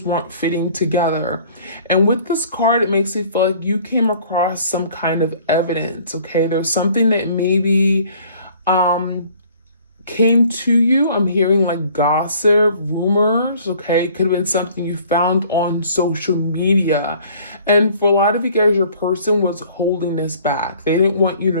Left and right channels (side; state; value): both; inverted; correlation -0.54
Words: weren't fitting together. And with this card, it makes me feel like you came across some kind of evidence, okay? There's something that maybe came to you. I'm hearing like gossip, rumors, okay? It could have been something you found on social media. And for a lot of you guys, your person was holding this back. They didn't want you